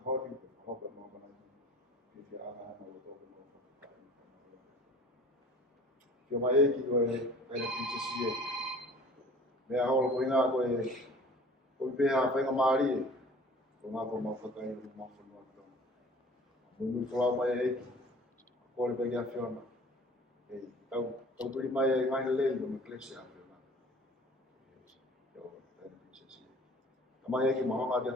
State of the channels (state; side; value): normal; both; correlation 0.47